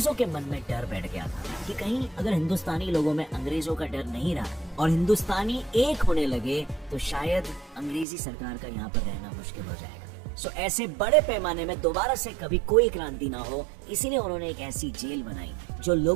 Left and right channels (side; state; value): left; drops out; at 8.1 s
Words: के मन में डर बैठ गया था कि कहीं अगर हिंदुस्तानी लोगों में अंग्रेजों का डर नहीं रहा और हिंदुस्तानी एक होने लगे तो शायद अंग्रेजी सरकार का यहाँ पर रहना मुश्किल हो जाएगा। ऐसे बड़े पैमाने में दोबारा से कभी कोई क्रांति ना हो, इसीलिए उन्होंने एक ऐसी जेल बनाई जो